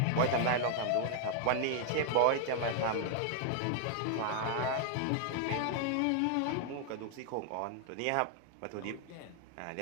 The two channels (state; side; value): different; both; correlation 0.00